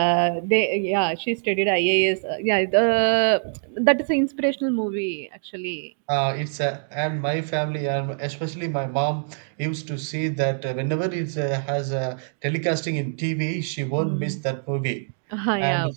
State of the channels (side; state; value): left; silent; digital silence